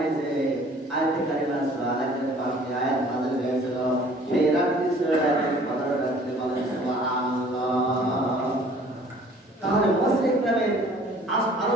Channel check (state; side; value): normal; both; correlation 0.53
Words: আয়াতে কারিমা সুবহানাল্লাহ পাঁচটি আয়াত নাযিল হয়েছিল সেই রাতটি ছিল লাইলাতুল কদর রাতে বলেন সুবহানাল্লাহ তাহলে মুফাসসির ইকরামের